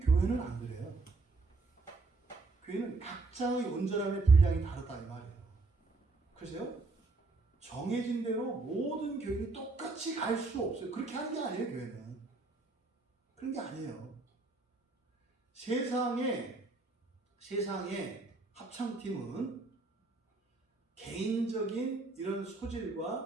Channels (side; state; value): left; quieter; 3.6 dB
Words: 안 그래요. 교회는 각자의 온전함의 분량이 다르다 이 말이에요. 그래서요, 정해진 대로 모든 교인이 똑같이 똑같이 갈 수 없어요. 그렇게 하는 게 아니에요, 교회는. 그런 게 아니에요. 세상의 합창팀은 개인적인 이런